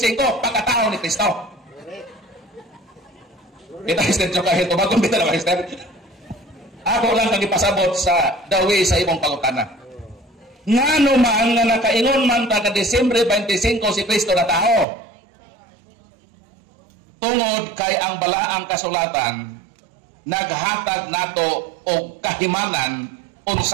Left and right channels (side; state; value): left; drops out; at 14.9 s